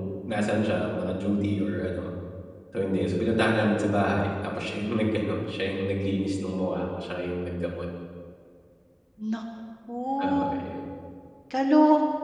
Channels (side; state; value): both; identical; correlation 1.00